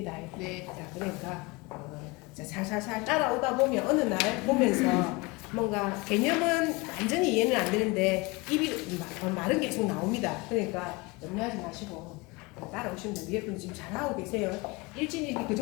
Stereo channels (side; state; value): right; quieter; 24.9 dB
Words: 네. 자, 그러니까 자, 살살살 따라오다 보면 어느 날 보면서 뭔가 개념은 완전히 이해는 안 되는데 입이 말은 계속 나옵니다. 그러니까 염려하지 마시고 따라오시면 돼요. 위에 분은 지금 잘하고 계세요. 일진일기 그